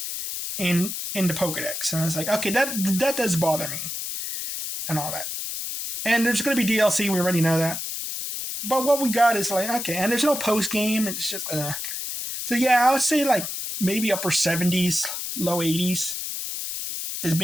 in the Pokedex. And it's like, okay, that does bother me. And all that. And there's going to be DLC, we already know that. But what we got is like, okay, and there's no post-game, it's just, So yeah, I would say like maybe upper 70s, low 80s is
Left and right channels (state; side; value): noise; left; hiss, 5 dB below the sound